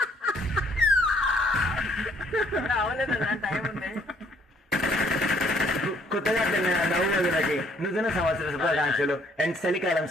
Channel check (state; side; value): normal; both; correlation 0.64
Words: టైం ఉంది. కొత్తగా నవ్వులకి నూతన సంవత్సర శుభాకాంక్షలు అండ్ చలికాలం